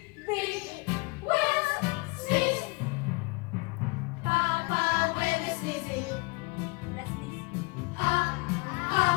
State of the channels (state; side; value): quieter; right; 28.5 dB